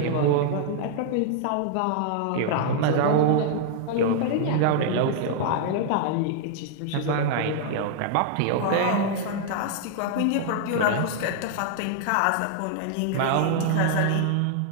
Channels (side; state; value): both; different; correlation 0.00